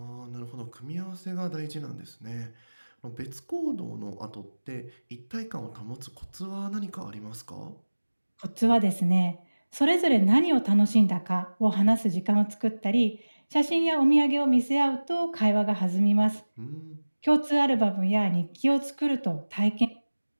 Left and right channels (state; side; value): inverted; both; correlation -1.00